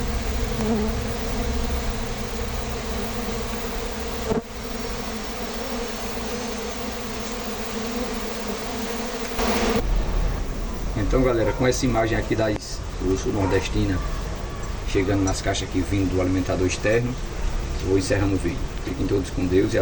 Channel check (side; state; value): both; identical; correlation 1.00